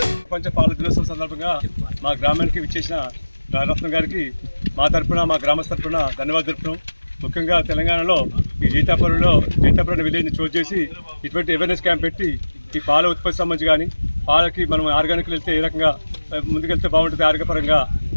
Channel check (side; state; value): both; inverted; correlation -1.00